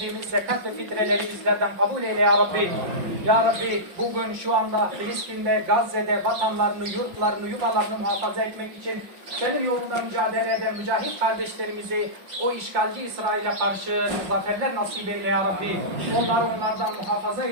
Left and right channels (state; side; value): late; left; 5.7 ms